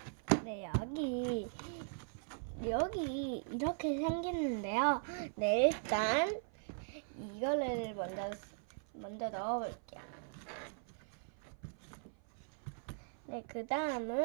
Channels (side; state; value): left; silent; 52 dB below the other